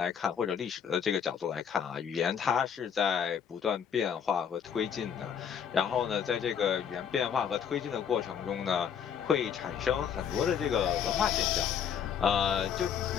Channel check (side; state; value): right; quieter; 7.9 dB